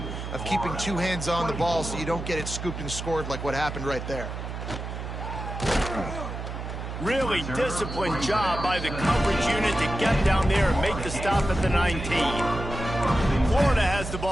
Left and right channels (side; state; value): right; noise; hum, 7 dB below the sound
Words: of keeping two hands on the ball so you don't get it scooped and scored like what happened right there. Really disciplined job by the coverage unit to get down there and make the stop at the 19. Florida has the